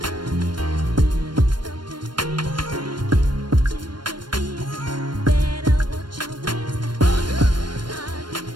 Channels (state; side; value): late; left; 0.72 ms